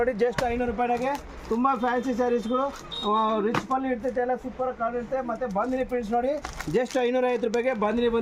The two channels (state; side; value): identical; both; correlation 1.00